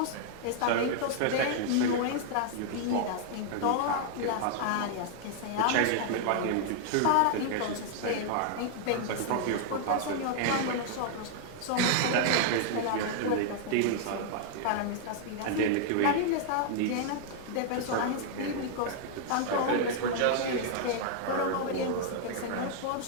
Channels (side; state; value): both; different; correlation 0.00